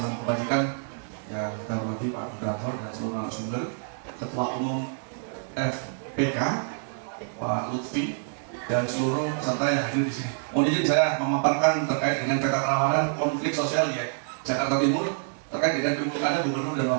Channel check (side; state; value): left; silent; digital silence